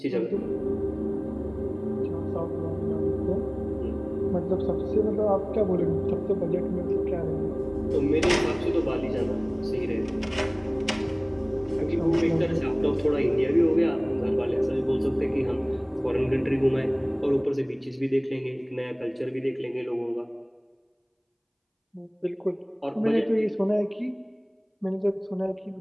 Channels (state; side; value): identical; both; correlation 1.00